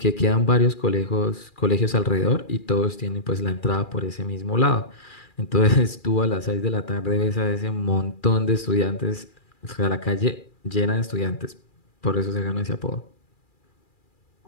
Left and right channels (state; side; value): late; right; 2.4 ms